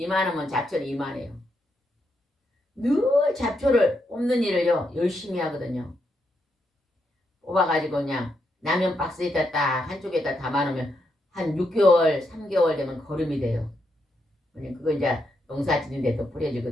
잡초는 이만해요. 늘 잡초를 뽑는 일을요 열심히 하거든요. 뽑아가지고 그냥 라면 박스에다 딱 한쪽에다 담아놓으면 한 6개월, 3개월 되면 거름이 돼요. 그거 이제 농사 짓는데 또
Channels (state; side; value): normal; both; correlation 0.81